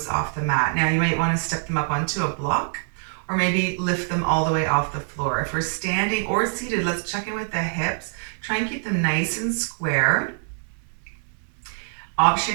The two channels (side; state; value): left; silent; 61 dB below the other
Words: off the mat. Now you might want to step them up onto a block or maybe lift them all the way off the floor. If we're standing or seated, let's check in with the hips. Try and keep them nice and square. Option